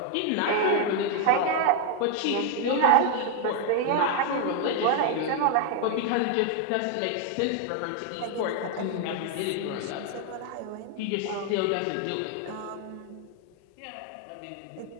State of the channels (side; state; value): both; different; correlation 0.00